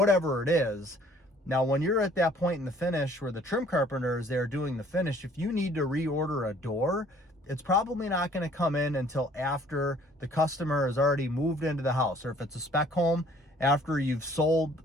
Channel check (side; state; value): both; normal; correlation 0.57